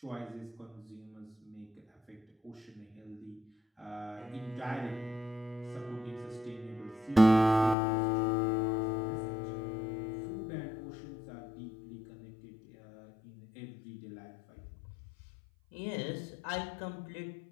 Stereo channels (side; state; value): right; drops out; at 7.8 s